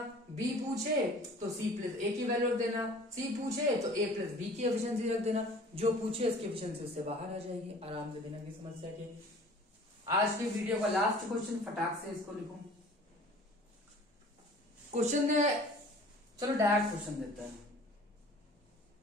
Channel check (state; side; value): normal; both; correlation 0.47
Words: b पूछे तो c प्लस a की वैल्यू रख देना, c पूछे तो a प्लस b की एफिशिएंसी रख देना, जो पूछे इसकी एफिशिएंसी उससे बाहर आ जाएगी आराम से, बिना किसी समस्या के। आज की वीडियो का लास्ट क्वेश्चन, फटाक से इसको लिखूं। क्वेश्चन ने, चलो डायरेक्ट क्वेश्चन देते हैं।